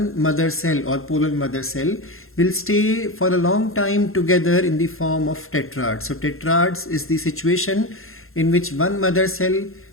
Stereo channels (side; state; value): right; late; 0.61 ms